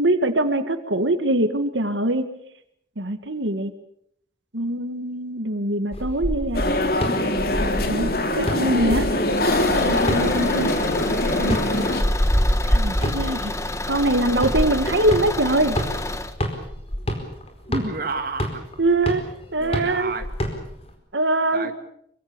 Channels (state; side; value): normal; both; correlation 0.26